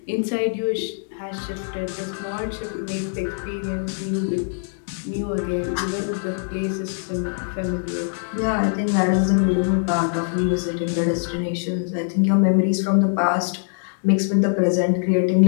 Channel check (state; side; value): silent; right; 64 dB below the other